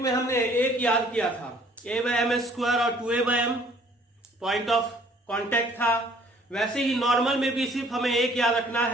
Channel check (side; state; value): both; normal; correlation 0.58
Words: में हमने एक याद किया था a बाय एम स्क्वायर और 2a by m point of contact था, वैसे ही नॉर्मल में भी सिर्फ हमें एक याद रखना